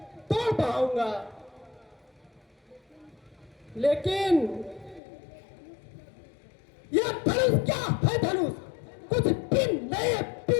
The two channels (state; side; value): drops out; right; at 5.0 s